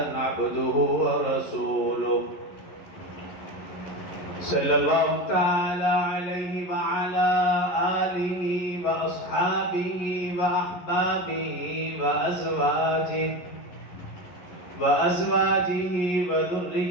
عبده ورسوله صلى الله تعالى عليه وعلى آله وأصحابه وأحبابه وأزواجه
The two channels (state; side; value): late; right; 11 ms